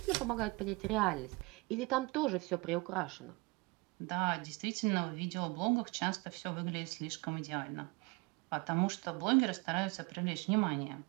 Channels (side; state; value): left; quieter; 25.6 dB